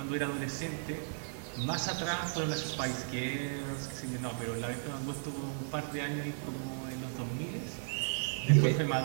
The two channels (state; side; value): silent; left; 54 dB below the other